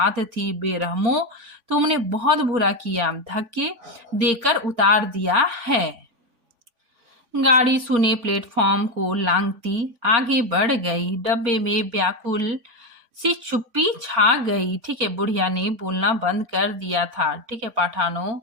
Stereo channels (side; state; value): left; late; 3.5 ms